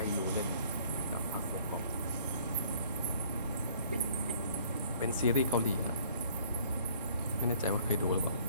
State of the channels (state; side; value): inverted; both; correlation -0.57